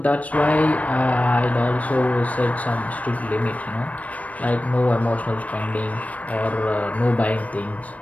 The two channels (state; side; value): late; right; 0.068 ms